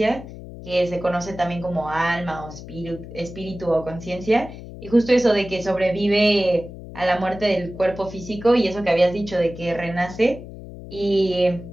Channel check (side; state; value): left; noise; hum, 13 dB below the sound